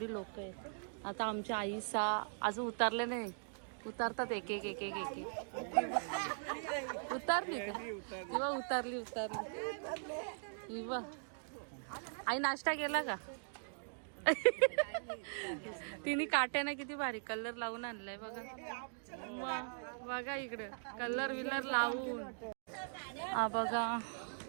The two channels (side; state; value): left; silent; digital silence